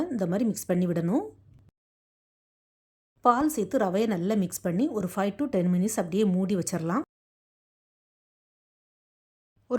இந்த மாதிரி மிக்ஸ் பண்ணி விடணும். பால் சேர்த்து ரவையை நல்லா மிக்ஸ் பண்ணி ஒரு 5 to 10 மினிட்ஸ் அப்படியே மூடி வச்சிடலாம்.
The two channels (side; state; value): both; identical; correlation 1.00